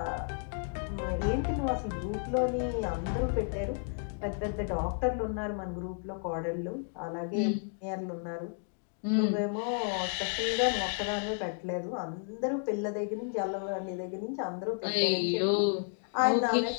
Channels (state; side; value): silent; right; 56 dB below the other